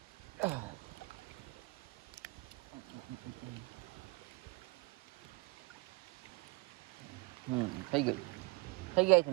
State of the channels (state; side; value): quieter; left; 26.0 dB